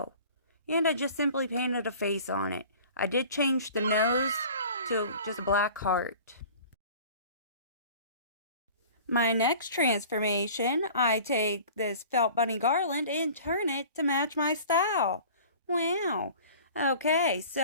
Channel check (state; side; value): inverted; both; correlation -0.44